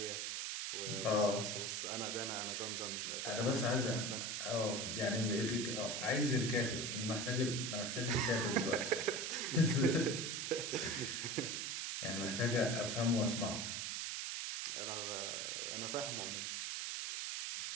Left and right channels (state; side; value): noise; right; hiss, 2 dB below the sound